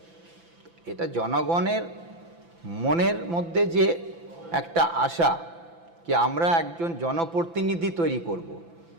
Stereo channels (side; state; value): left; late; 5.9 ms